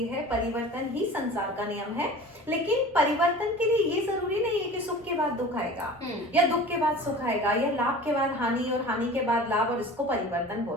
है, परिवर्तन ही संसार का नियम है। लेकिन परिवर्तन के लिए ये जरूरी नहीं है कि सुख के बाद दुख आएगा या दुख के बाद सुख आएगा या लाभ के बाद हानि और हानि के बाद लाभ, और इसको परिवर्तन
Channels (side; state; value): both; normal; correlation 0.39